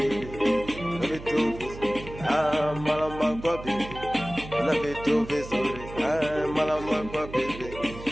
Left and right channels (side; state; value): right; noise; hum, 13 dB below the sound